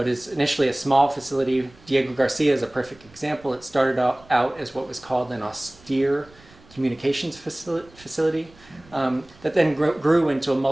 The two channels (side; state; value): right; noise; rumble, 26 dB below the sound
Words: is initially a small facility. Diego Garcia is a perfect example. It started out as what was called an austere communications facility that then grew into a